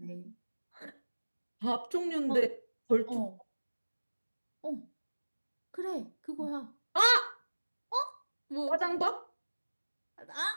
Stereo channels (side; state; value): both; inverted; correlation -1.00